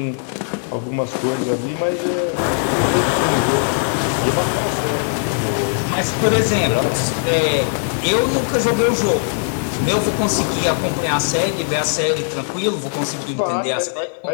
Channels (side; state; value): right; silent; digital silence